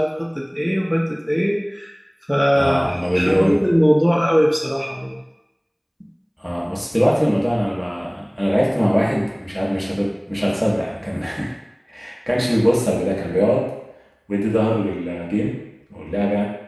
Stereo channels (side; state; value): both; identical; correlation 1.00